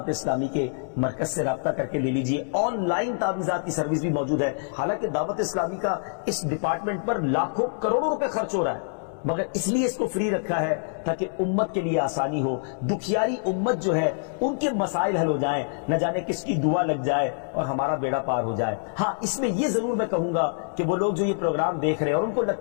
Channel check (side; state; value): right; silent; digital silence